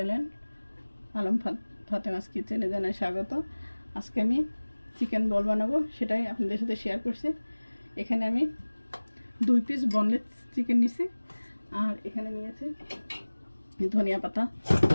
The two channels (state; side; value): inverted; both; correlation -1.00